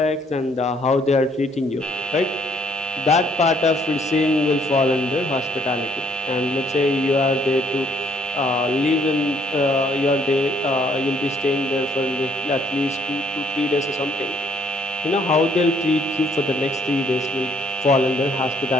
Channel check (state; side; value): normal; both; correlation 0.66